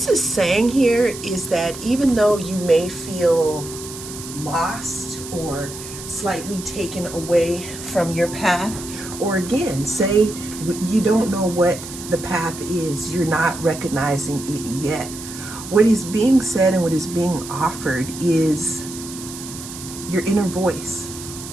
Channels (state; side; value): noise; right; hiss, 12 dB below the sound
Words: is saying here is that even though you may feel lost or slightly taken away from your path, or again, say you don't know what the path is, you're not recognizing it yet. What is being said and what is being offered is your inner voice.